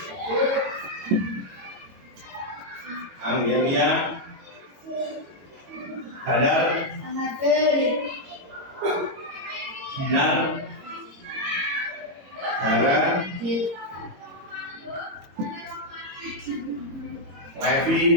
Anggelia, Hadar, Dinar, Hara,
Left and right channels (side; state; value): left; late; 22 ms